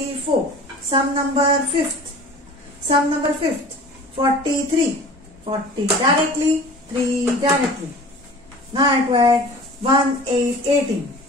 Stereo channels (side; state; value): both; normal; correlation 0.42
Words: Sum number fifth. Sum number fifth. 43. 40 directly, 3 directly. Now I have to add 1, 8, 18.